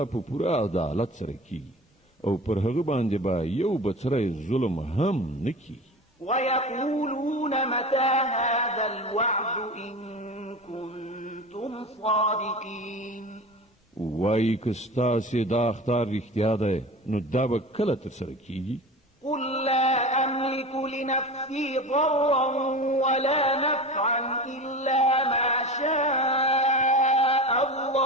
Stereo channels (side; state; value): both; normal; correlation 0.33